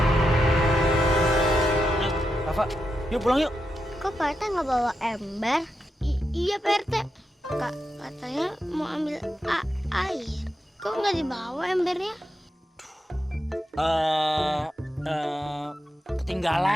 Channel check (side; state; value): both; normal; correlation 0.86